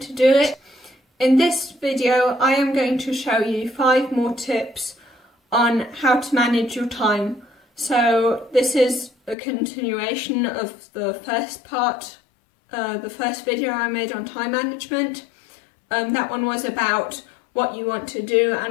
do it? In this video I am going to show you 5 more tips on how to manage your time. So this is a continuation of the first part, the first video I made on time management. That one was about what you want to do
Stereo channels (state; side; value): drops out; right; at 9.3 s